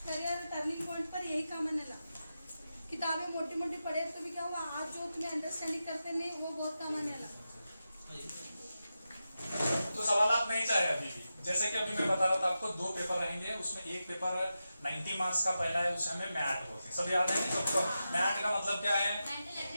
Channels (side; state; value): both; inverted; correlation -0.91